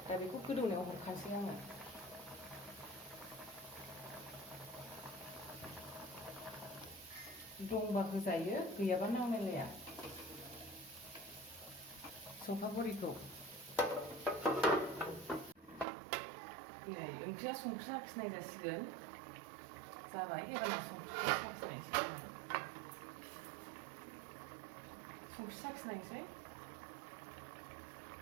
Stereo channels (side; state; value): left; drops out; at 15.9 s